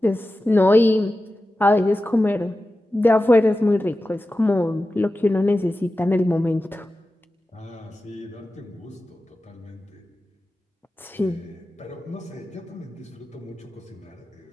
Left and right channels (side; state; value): both; normal; correlation 0.94